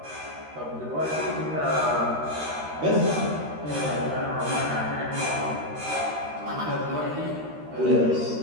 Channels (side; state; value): left; late; 13 ms